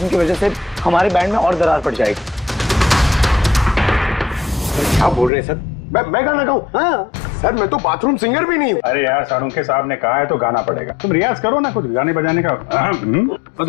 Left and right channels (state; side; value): drops out; right; at 5.3 s